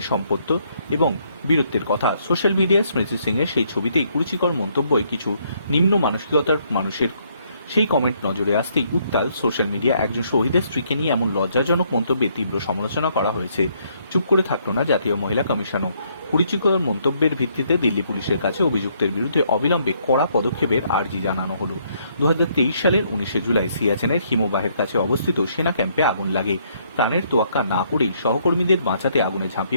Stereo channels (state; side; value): inverted; both; correlation -0.69